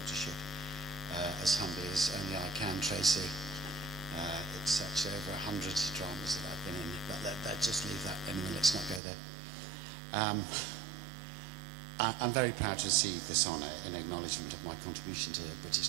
as humbly as only I can, Tracy. It's such over 100 dramas that I've been in, but let's just leave that. Anyway, let's not go there. I'm very proud to receive this honour in acknowledgement of my contribution to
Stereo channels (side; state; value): left; drops out; at 9.0 s